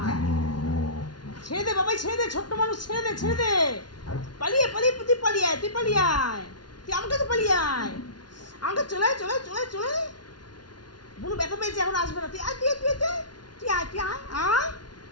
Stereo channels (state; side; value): late; right; 0.70 ms